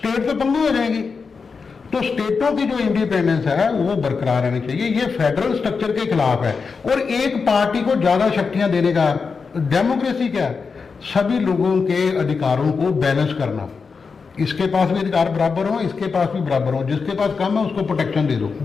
तो पंगु हो जाएगी। तो स्टेटों की जो इंडिपेंडेंस है वो बरकरार रहनी चाहिए। ये फेडरल स्ट्रक्चर के खिलाफ है। और एक पार्टी को ज्यादा शक्तियां देने का, डेमोक्रेसी क्या है? सभी लोगों के अधिकारों को बैलेंस करना, इसके पास भी अधिकार बराबर हो, इसके पास भी बराबर हो, जिसके पास कम है उसको प्रोटेक्शन दे दो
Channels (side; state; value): right; quieter; 5.1 dB